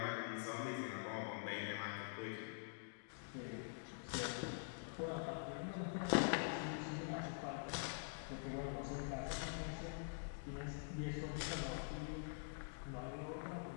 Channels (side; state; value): right; silent; digital silence